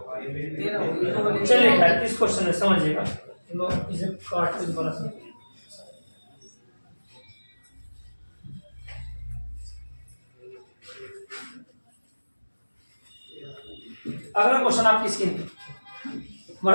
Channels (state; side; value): inverted; both; correlation -1.00